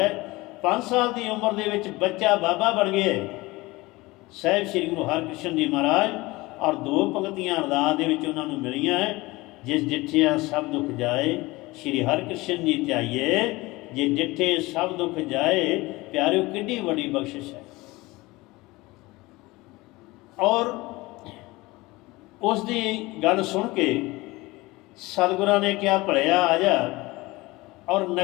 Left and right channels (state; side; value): quieter; right; 21.3 dB